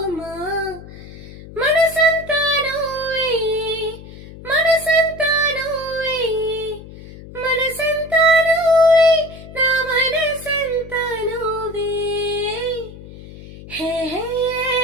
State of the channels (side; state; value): left; noise; hum, 16 dB below the sound